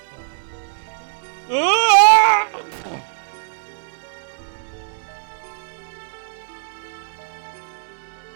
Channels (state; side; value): silent; left; 64 dB below the other